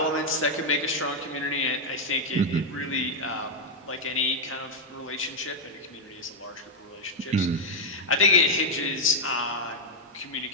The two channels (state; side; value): normal; both; correlation 0.01